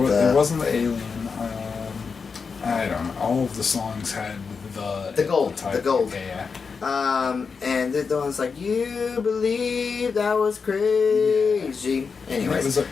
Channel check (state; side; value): quieter; right; 5.3 dB